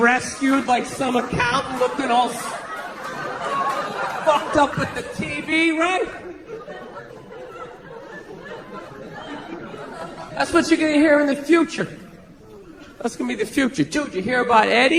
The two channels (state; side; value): identical; both; correlation 1.00